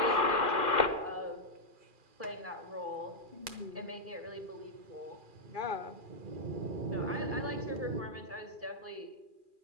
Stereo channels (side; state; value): left; late; 2.4 ms